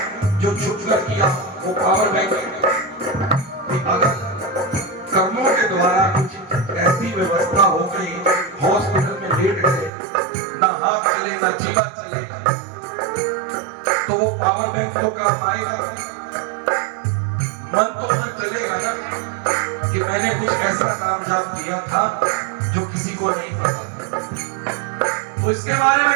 जो छुप कर किया, वो पावर बैंक है। अगर कर्मों के द्वारा कुछ ऐसी व्यवस्था हो गई, हॉस्पिटल में लेट गए, ना हाथ चले ना जीवा चले, तो वो पावर बैंक को काम आएगा। मन तो न चलेगा ना कि मैंने कुछ ऐसा नाम जाप किया था जो किसी को नहीं पता, तो इसके बारे में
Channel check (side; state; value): left; drops out; at 9.9 s